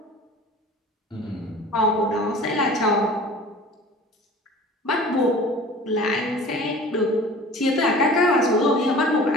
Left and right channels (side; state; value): both; normal; correlation 0.43